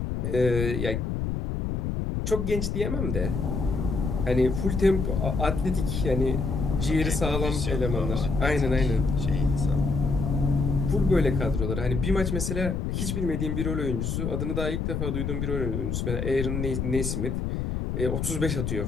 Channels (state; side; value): noise; left; rumble, 2 dB below the sound